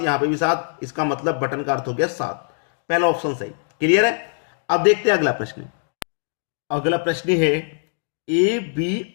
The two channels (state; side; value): silent; right; digital silence